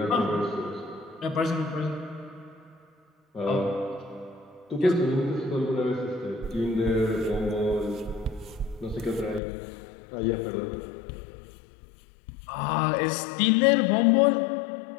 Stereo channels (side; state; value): right; drops out; at 9.4 s